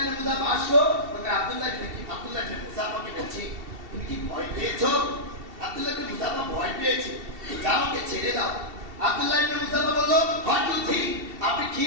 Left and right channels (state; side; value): late; left; 2.7 ms